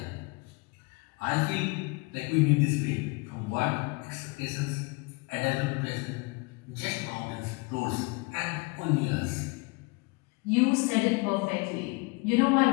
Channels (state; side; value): quieter; right; 27.9 dB